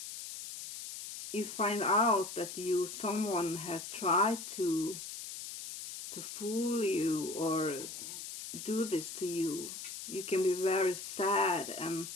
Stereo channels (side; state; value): left; noise; hiss, 9 dB below the sound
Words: you find out that someone has tried to fool you or do this to you, you can be very sad and